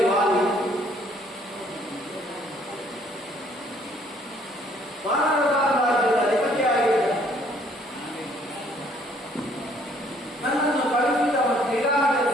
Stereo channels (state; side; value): normal; both; correlation 0.62